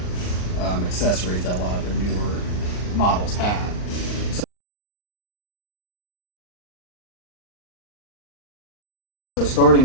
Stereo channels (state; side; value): late; right; 39 ms